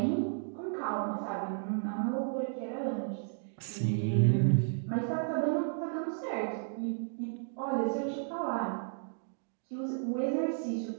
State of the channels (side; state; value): left; silent; digital silence